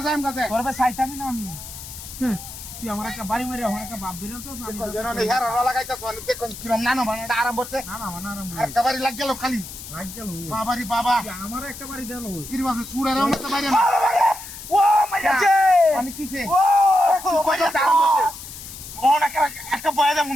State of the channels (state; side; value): noise; left; hiss, 12 dB below the sound